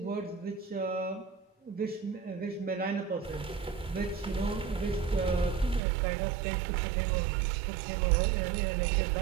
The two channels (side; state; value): left; drops out; at 5.8 s